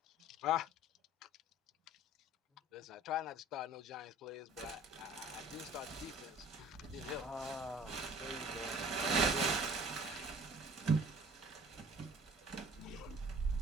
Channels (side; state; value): both; normal; correlation 0.49